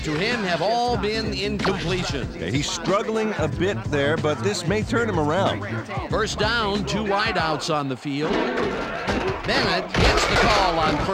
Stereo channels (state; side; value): identical; both; correlation 1.00